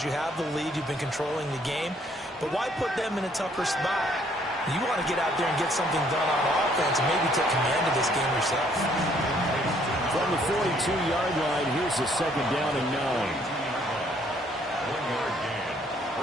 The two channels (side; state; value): both; normal; correlation 0.64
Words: you have the lead, you've been controlling the game. But why put them in a tougher spot? You want to get out there and get something done on offense and maybe take command of this game yourself. From the 42-yard line, here's the 2nd down and 9.